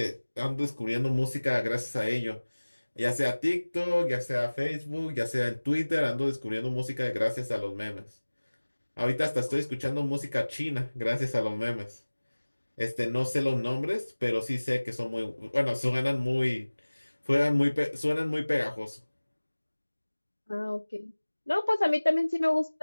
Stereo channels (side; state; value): both; inverted; correlation -1.00